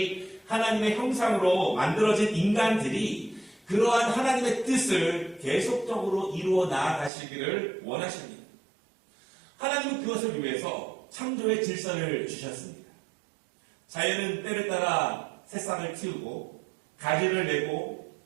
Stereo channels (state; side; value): drops out; left; at 7.1 s